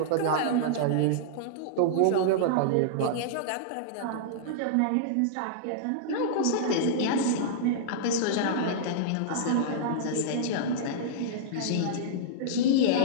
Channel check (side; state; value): both; different; correlation -0.02